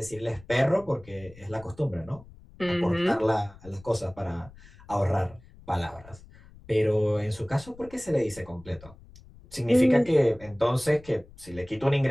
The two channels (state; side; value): noise; left; rumble, 22 dB below the sound